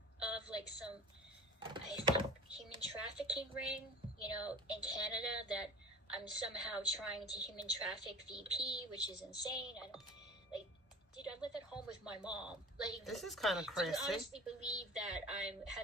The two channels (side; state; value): both; normal; correlation 0.38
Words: of like some, I think, human trafficking ring, you know, in Canada that I'm somehow trying to human traffic VP, which is insane. Like, dude, I live at home with my mom. Like, This is kind of crazy. Do you honestly believe that I